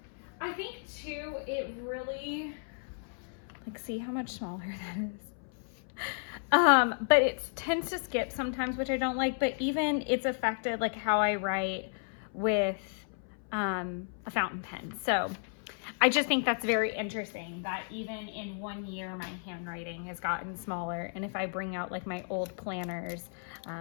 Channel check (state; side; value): silent; right; 56 dB below the other